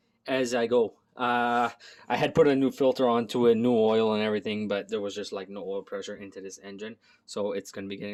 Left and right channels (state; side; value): identical; both; correlation 1.00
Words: I go. I had put a new filter onto it, new oil and everything, but there was just like no oil pressure into this engine, so it's gonna be